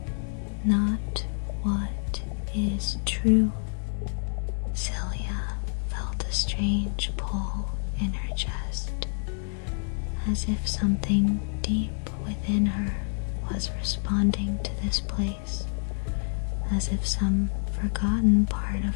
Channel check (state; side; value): silent; right; 59 dB below the other